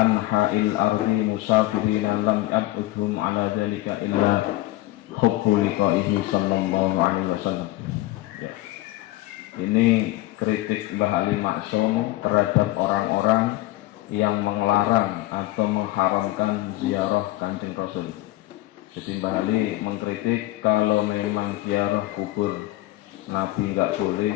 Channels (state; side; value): quieter; right; 17.2 dB